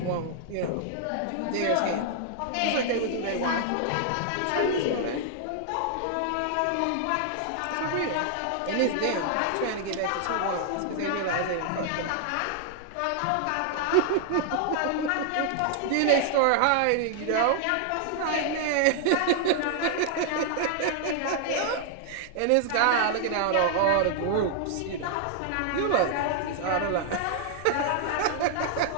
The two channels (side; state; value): both; different; correlation 0.00